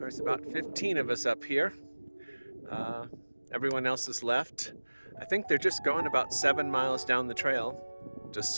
about 15 of us up here. Everyone else has left. I think they're just going about 7 miles down the trail to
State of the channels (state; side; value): inverted; both; correlation -1.00